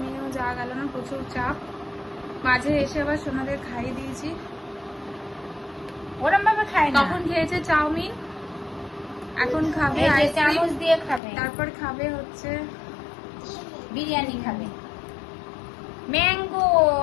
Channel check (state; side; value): drops out; right; at 11.2 s